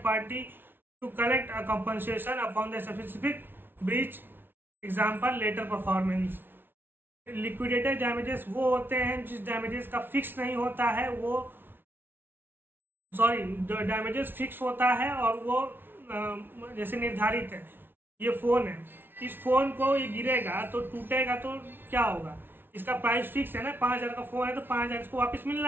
party to collect a compensation upon the specific breach, example later performance। Liquidated damages वो होते हैं जिस damages का fix नहीं होता है, वो damages fix होता है और वो जैसे निर्धारित है। ये फोन है, इस फोन को ये गिरेगा तो टूटेगा तो क्या होगा, इसका प्राइस फिक्स है ना, 5,000 का फोन है तो 5,000 इसको वापस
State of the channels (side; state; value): left; late; 0.10 ms